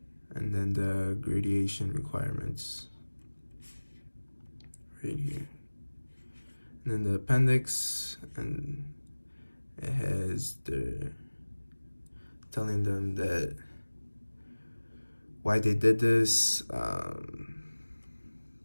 And then the gradation requirements right here. And then the appendix, and it has the telling them that why they did this,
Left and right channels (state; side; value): inverted; both; correlation -1.00